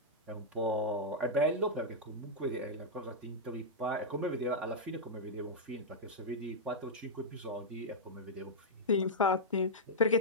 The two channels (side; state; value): both; normal; correlation -0.07